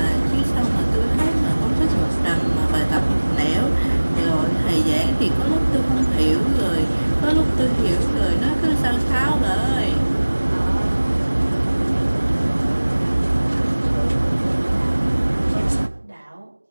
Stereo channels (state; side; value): inverted; both; correlation -1.00